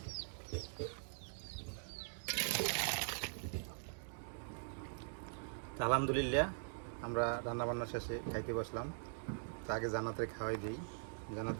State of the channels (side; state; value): left; silent; digital silence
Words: তো আলহামদুলিল্লাহ আমরা রান্নাবান্না শেষে খাইতে বসলাম। তো আগে জান্নাতের খাওয়াই দিই।